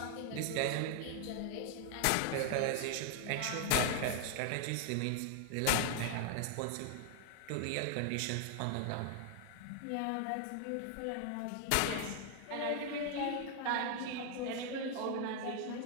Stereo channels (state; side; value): different; both; correlation 0.00